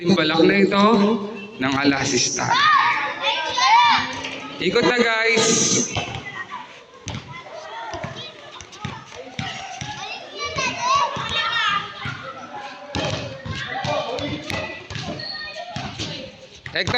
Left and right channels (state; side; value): identical; both; correlation 1.00